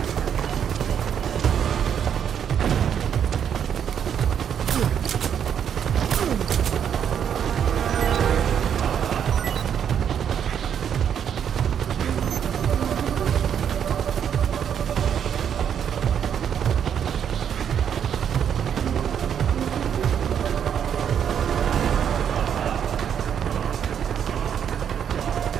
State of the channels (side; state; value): left; quieter; 8.5 dB